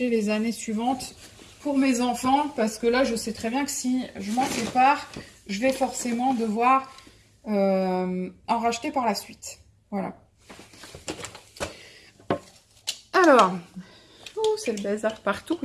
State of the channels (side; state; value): both; identical; correlation 1.00